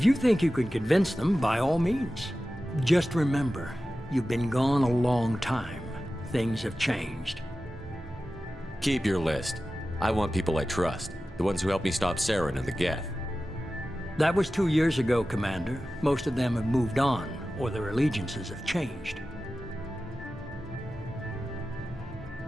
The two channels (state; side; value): noise; left; hum, 21 dB below the sound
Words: you think you can convince them, by all means. Just remember, you've been gone a long time. Things have changed. Keep your list. I want people I trust. The ones who helped me stop Saren and the Geth. That was 2 years ago, Commander. Most of them have moved on, or their allegiances have changed.